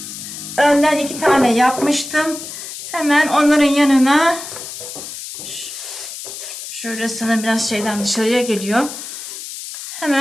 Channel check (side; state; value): left; noise; hiss, 10 dB below the sound